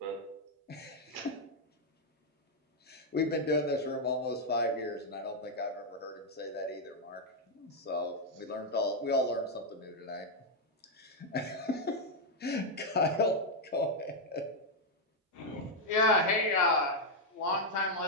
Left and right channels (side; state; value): both; normal; correlation -0.01